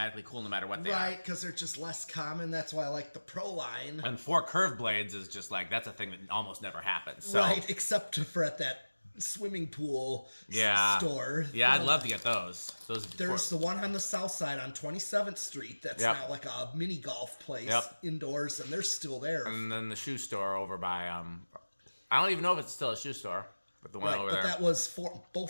cool no matter what they are. Right, because they're just less common. That's why I like the Pro line. And 4 curved blades is just like, that's a thing that almost never happens. So, Right, except for at that swimming pool store. Yeah, I'd love to get those. There's the one on the south side on 27th Street that's Yep. now like a mini golf place Yep. indoors, and they're still there. And then the shoe store over by, I don't even know if it's still a shoe store, but the one Right, over but there. that was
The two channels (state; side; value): inverted; both; correlation -1.00